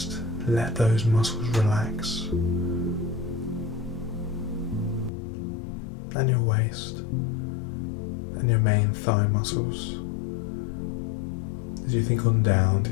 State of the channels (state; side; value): drops out; right; at 5.1 s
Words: let those muscles relax. And your waist and your main thigh muscles. As you think on down to